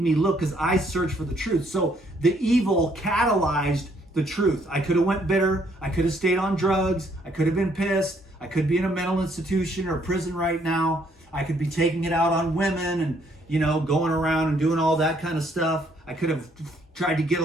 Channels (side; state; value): both; normal; correlation 0.68